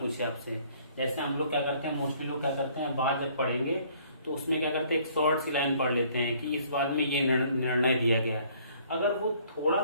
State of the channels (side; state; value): both; inverted; correlation -0.59